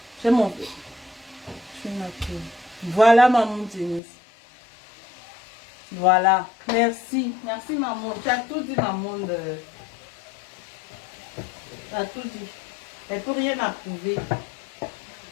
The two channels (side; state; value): right; drops out; at 4.0 s